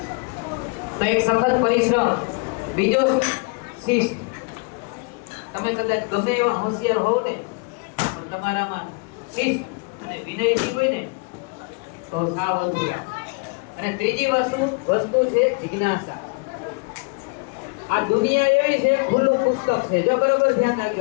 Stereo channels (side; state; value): right; quieter; 32.7 dB